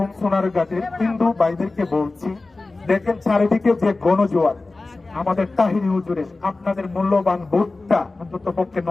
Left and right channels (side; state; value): right; quieter; 3.3 dB